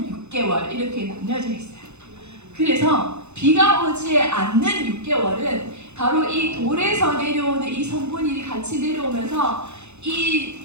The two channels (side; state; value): left; late; 0.81 ms